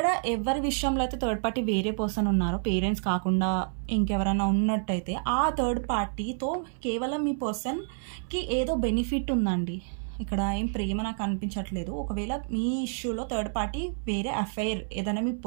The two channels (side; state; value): left; silent; 59 dB below the other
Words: ఎవరి విషయంలో అయితే థర్డ్ పార్టీ వేరే పర్సన్ ఉన్నారో, పేరెంట్స్ కాకుండా ఇంకెవరైనా ఉన్నట్టయితే, ఆ థర్డ్ పార్టీతో కేవలం మీ పర్సన్కి ఏదో బెనిఫిట్ ఉందండి. ఇక్కడ ఏం ప్రేమ నాకు అనిపించట్లేదు. ఒకవేళ మీ ఇష్యూలో థర్డ్ పార్టీ వేరే అఫైర్ ఏదైనా మీ